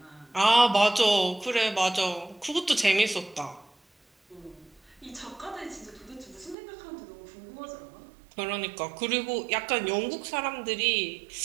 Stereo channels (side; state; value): left; drops out; at 6.6 s